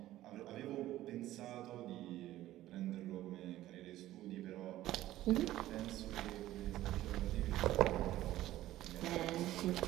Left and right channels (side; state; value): left; quieter; 14.7 dB